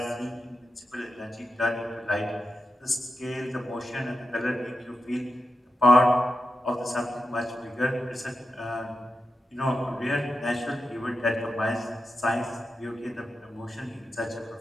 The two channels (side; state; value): both; normal; correlation 0.89